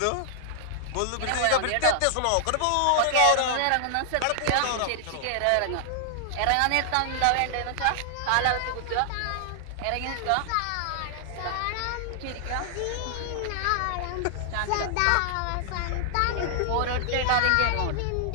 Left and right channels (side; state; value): both; different; correlation 0.00